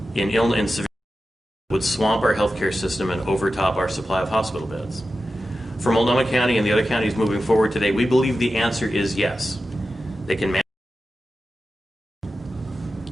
in severe that would swamp our healthcare system and overtop our supply of hospital beds? For Multnomah County and the other counties moving forward today, we believe the answer is yes. They can manage.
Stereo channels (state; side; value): normal; both; correlation 0.92